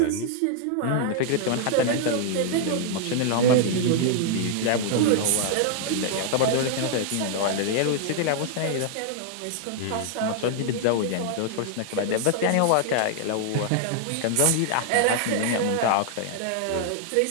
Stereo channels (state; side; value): different; both; correlation 0.00